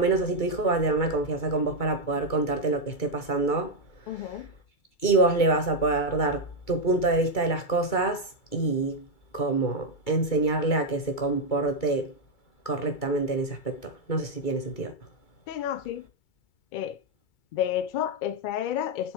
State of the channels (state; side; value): late; right; 2.3 ms